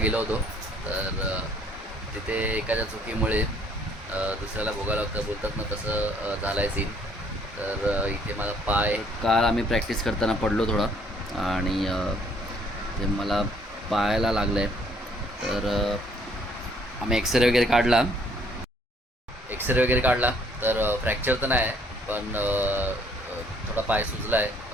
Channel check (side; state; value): both; normal; correlation 0.63